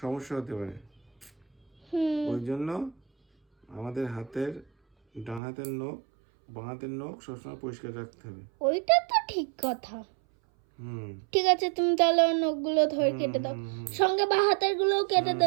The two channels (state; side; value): drops out; left; at 5.4 s